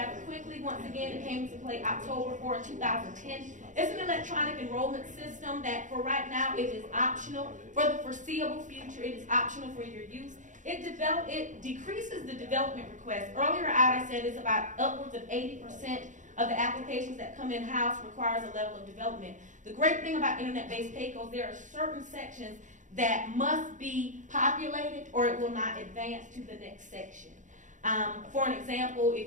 quickly. Once again, it came into play October 4, 2010. It's an electronic enrollment system that for right now it is optional. For the foreseeable future, it is optional for your use. It decreases the development request. Earlier I said it's about upwards of 80% of the applications that come in-house requires a level of development. The great thing about internet-based pay-goals, there are certain sections that must be populated or it will not advance to the next section. For an example,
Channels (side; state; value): left; late; 0.36 ms